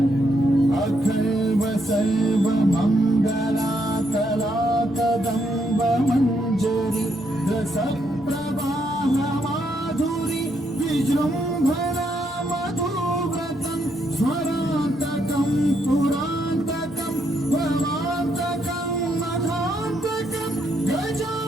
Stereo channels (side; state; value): both; normal; correlation 0.76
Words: अखल्व सर्वमङ्गलाकलाकदम्ब मञ्जरी रसप्रवाह माधुरी विजृम्भणा मधुव्रतं स्वरान्तकं पुरान्तकं भवान्तकं मधान्तकं